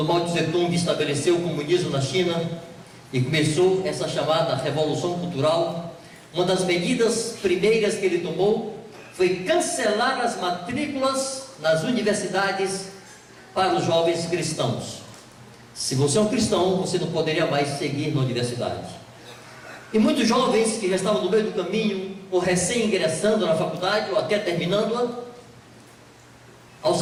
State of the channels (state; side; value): identical; both; correlation 1.00